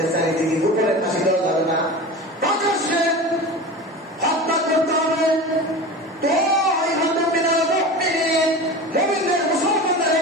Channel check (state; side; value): normal; both; correlation 0.31